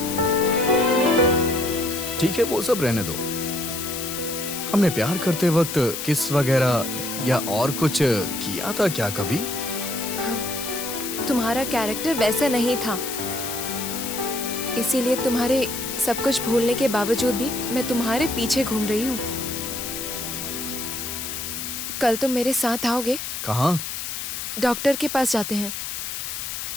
ठीक है, वो सब रहने दो। हमने प्यार करते वक्त किस वगैरह या और कुछ किया था क्या कभी? तुम्हारा कैरेक्टर वैसा नहीं था, इसीलिए तुम्हारे सब कुछ भूलने के बावजूद भी मैं तुम्हारे पीछे घूम रही हूँ। कल तुम मेरे साथ आओगे? कहाँ? डॉक्टर के पास जाते हैं।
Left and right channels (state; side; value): noise; left; hiss, 5 dB below the sound